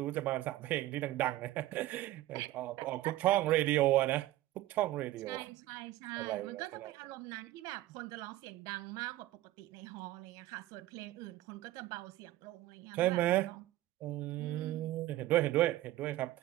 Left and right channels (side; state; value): left; quieter; 15.7 dB